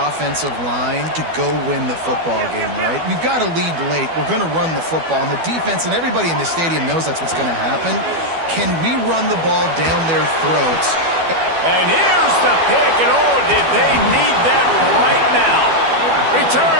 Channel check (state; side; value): late; left; 12 ms